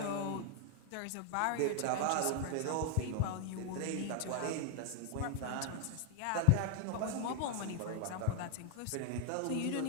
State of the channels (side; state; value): both; different; correlation 0.00